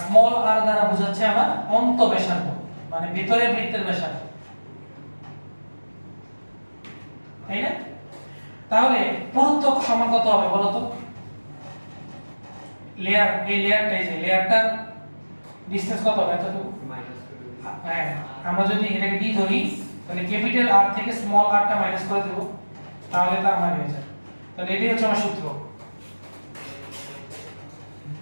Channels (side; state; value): both; inverted; correlation -1.00